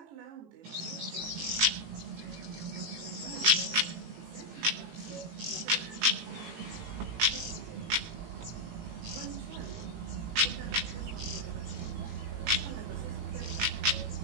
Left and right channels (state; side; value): late; left; 18 ms